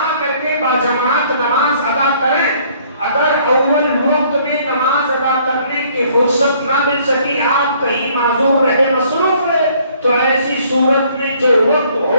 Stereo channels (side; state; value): both; inverted; correlation -0.61